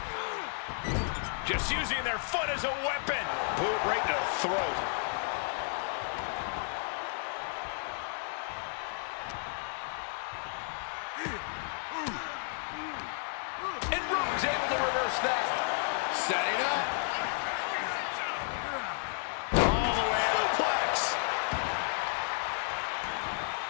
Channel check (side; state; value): right; silent; 56 dB below the other